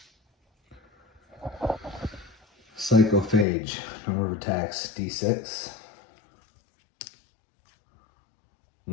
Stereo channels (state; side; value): drops out; right; at 3.5 s